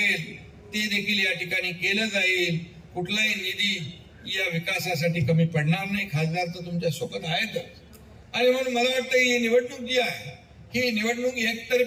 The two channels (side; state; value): both; identical; correlation 1.00